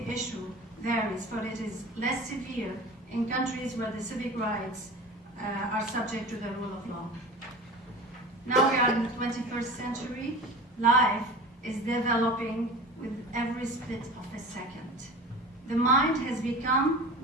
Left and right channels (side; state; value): both; normal; correlation 0.35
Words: issue varies, for it is less severe in countries where the civic rights are subject to the rule of law. Now we are in the 21st century. Life is developing with every split of a second. The mind has become